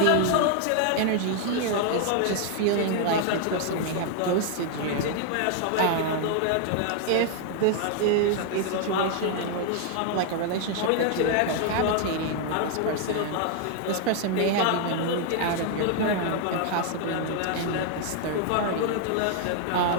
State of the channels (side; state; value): both; different; correlation 0.00